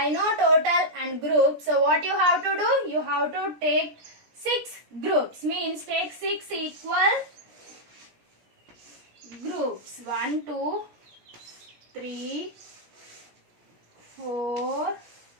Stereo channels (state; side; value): late; left; 17 ms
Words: know total and groups. So what you have to do? You have to take 6 groups. Means take 6 equal groups. 1, 2, 3, 4,